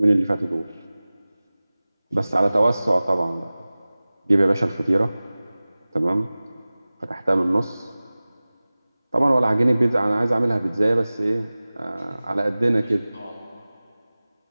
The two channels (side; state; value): both; inverted; correlation -0.98